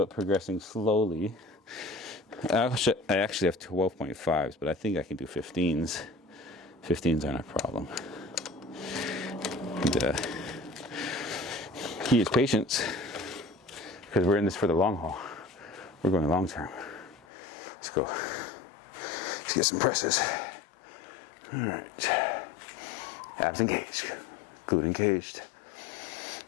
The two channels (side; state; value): right; drops out; at 17.2 s